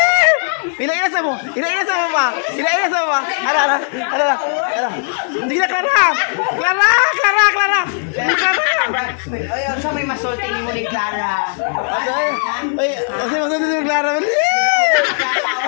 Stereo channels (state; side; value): silent; right; 61 dB below the other